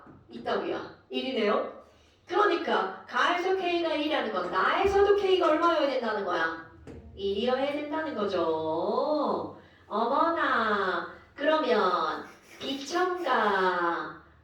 있다고요. 1이네요. 그러니까 가에서 K가 1이라는 건 나에서도 K가 얼마여야 된다는 거야? 1이어야 된다는 거죠. 어머나. 그러면 비첨가.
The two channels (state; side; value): identical; both; correlation 1.00